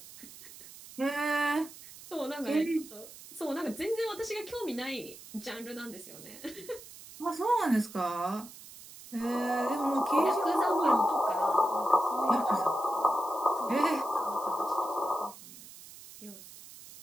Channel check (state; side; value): noise; right; hiss, 17 dB below the sound